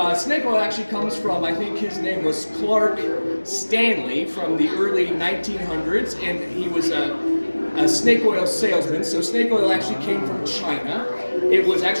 snake oil actually comes from, I think his name was Clark Stanley from the early 1900s, and he was a snake oil salesman. So snake oil actually came from China. It was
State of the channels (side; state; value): both; inverted; correlation -1.00